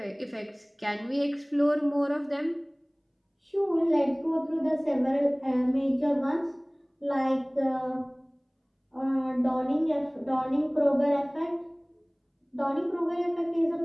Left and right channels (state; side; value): identical; both; correlation 1.00